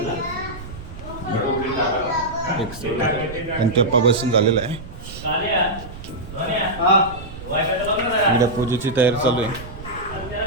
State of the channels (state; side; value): noise; right; rumble, 13 dB below the sound